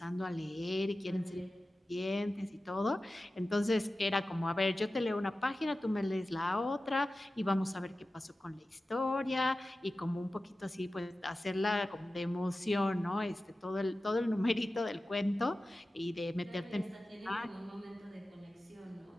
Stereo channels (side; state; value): both; normal; correlation 0.95